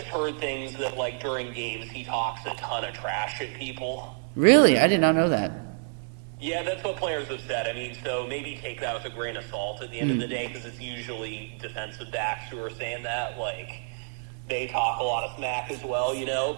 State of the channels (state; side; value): silent; left; digital silence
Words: heard things that, like, during games, he talks a ton of trash at people. Really? I did not know that. Yeah, that's what players have said. I mean, so maybe take that with a grain of salt at the end of the day, because it's usually defensive backs who are saying that. Like, they talk a lot of smack as well, you know?